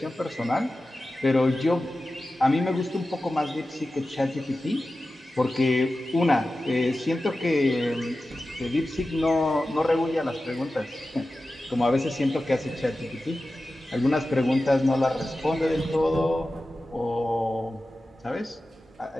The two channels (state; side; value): normal; both; correlation 0.94